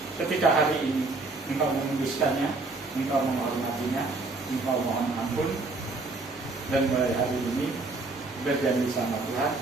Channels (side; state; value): left; quieter; 3.4 dB